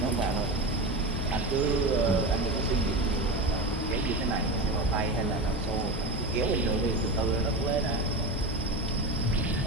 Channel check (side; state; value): both; normal; correlation 0.23